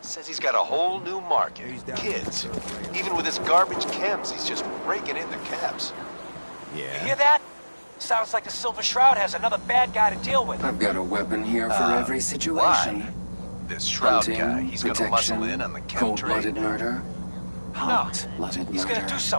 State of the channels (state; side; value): inverted; both; correlation -1.00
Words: Says he's got a whole new market. Kids. Even with his garbage chems, he's just raking in the cabs. You hear that? Sounds like the Silver Shroud has another bad guy to deal with. I've got a weapon here for every situation. Why? This Shroud Hunting, guy, he's gonna muscle in on the chem trade. cold-blooded murder, hot-blooded He's gonna murder. do